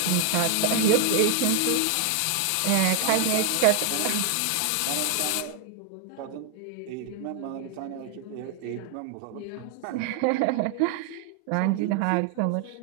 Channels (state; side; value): different; both; correlation 0.00